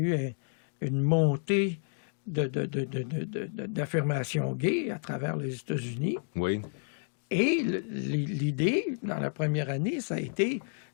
une montée d'affirmations gays à travers les États-Unis. Oui. Et l'idée, dans la première année, ça a été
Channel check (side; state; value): right; silent; digital silence